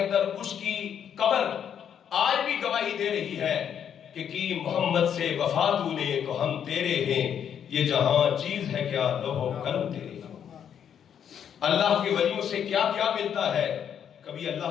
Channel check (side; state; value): right; quieter; 8.6 dB